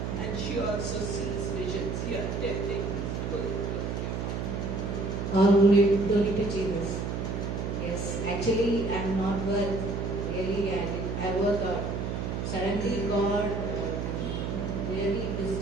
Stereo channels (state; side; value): noise; right; hum, 3 dB below the sound